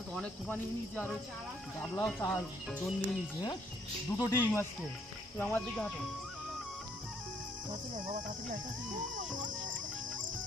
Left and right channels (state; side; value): normal; both; correlation 0.68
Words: অনেক খোপা নিয়ে নিয়েছি আর গাবলাও চাল দোন নিয়ে নিয়েছি হ্যাঁ দুটো ডিম আজকে তুই আমার দিকে হাঁটো বাবা তাড়াতাড়ি